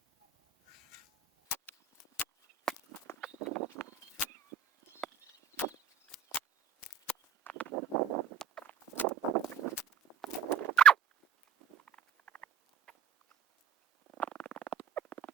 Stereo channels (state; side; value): quieter; left; 7.6 dB